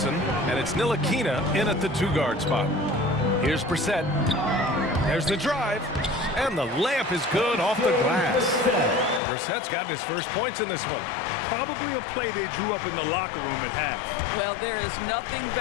And it's Ntilikina in at the two-guard spot. Here's Brissett. There's the drive. And the layup is good off the glass. Brissett's gotten his first points in this one. Probably a play they drew up in the locker room at half. Well, there is nothing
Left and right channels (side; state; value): right; drops out; at 9.2 s